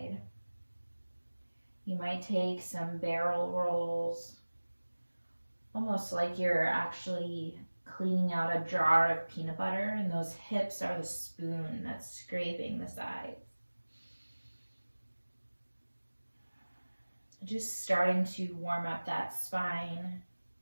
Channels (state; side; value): inverted; both; correlation -1.00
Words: You might take some barrel rolls, almost like you're actually cleaning out a jar of peanut butter, and those hips are the spoon that's scraping the sides. Just starting to warm up that spine.